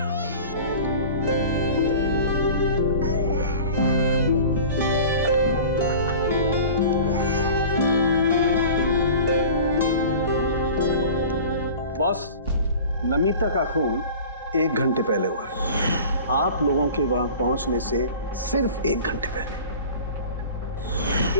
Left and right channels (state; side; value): inverted; both; correlation -0.40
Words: बॉस, नमिता का खून 1 घंटे पहले हुआ है, आप लोगों के वहां पहुंचने से सिर्फ 1 घंटे पहले।